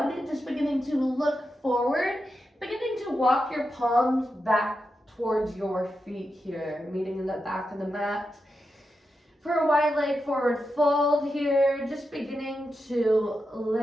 just beginning to look forward, beginning to walk your palms back towards your feet here, meeting in the back of the mat. For a wide leg forward fold here, just beginning to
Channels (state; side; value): normal; both; correlation 0.88